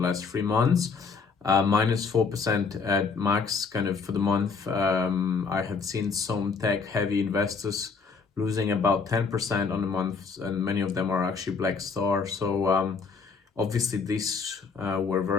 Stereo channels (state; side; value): quieter; right; 5.0 dB